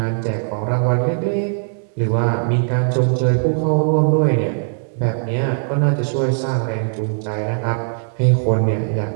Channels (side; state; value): left; silent; digital silence